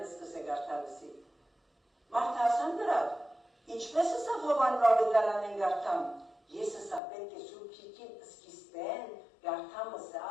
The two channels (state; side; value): drops out; right; at 7.0 s